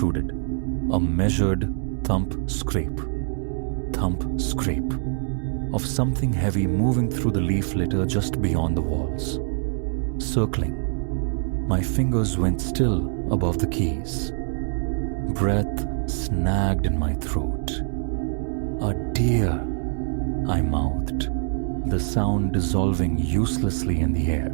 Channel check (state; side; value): silent; left; digital silence